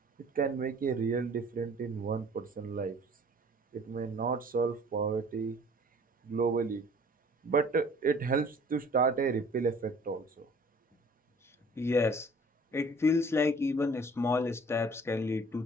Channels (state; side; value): normal; both; correlation 0.51